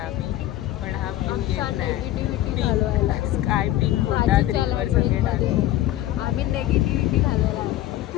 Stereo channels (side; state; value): right; quieter; 14.1 dB